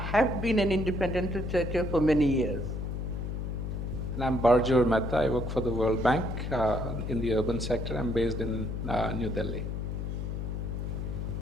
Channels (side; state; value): left; noise; hum, 3 dB below the sound